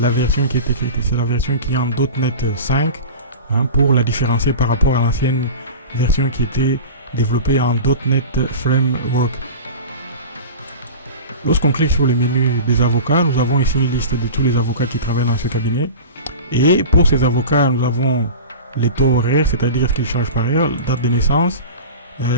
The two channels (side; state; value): both; inverted; correlation -0.33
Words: la version qui est écrite. C'est la version qui est en .NET 5, hein, pour la différencier par rapport à l'ancienne version qui était développée en .NET Framework. Lorsqu'on clique sur le menu des avocats, nous avons ici une liste de tous les avocats qui travaillent dans ce cabinet. Et pour ces avocats, nous avons les taux horaires, c'est-à-dire qu'ils changent par heure, date de naissance,